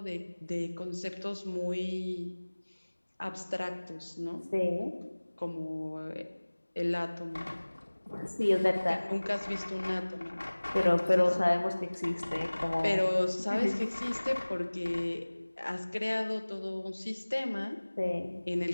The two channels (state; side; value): inverted; both; correlation -1.00